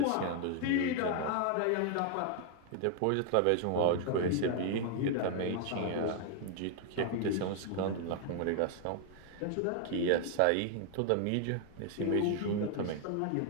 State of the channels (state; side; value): different; both; correlation 0.00